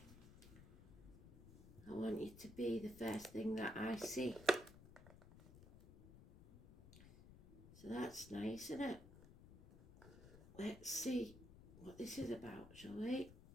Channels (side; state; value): left; noise; rumble, 18 dB below the sound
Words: I want you to be the first thing that I see. So that's nice, isn't it? Let's see what this is about, shall we?